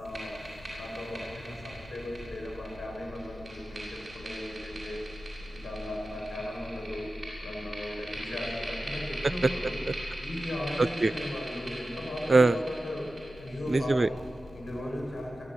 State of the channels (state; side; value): noise; left; rumble, 20 dB below the sound